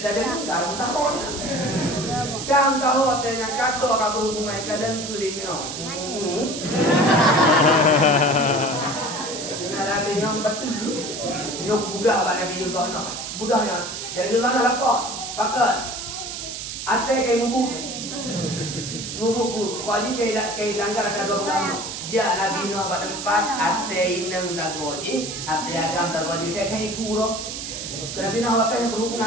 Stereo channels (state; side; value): noise; right; hiss, 7 dB below the sound